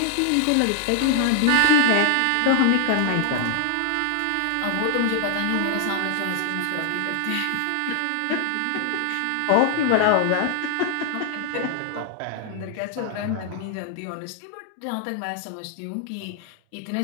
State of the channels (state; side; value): different; both; correlation 0.00